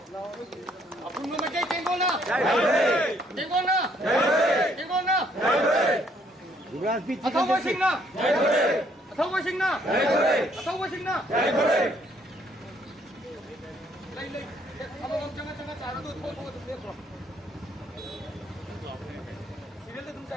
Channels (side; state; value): both; normal; correlation 0.67